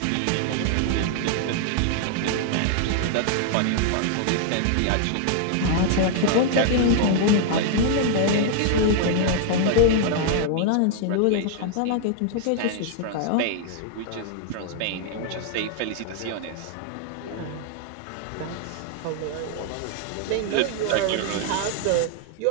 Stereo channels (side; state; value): both; different; correlation 0.00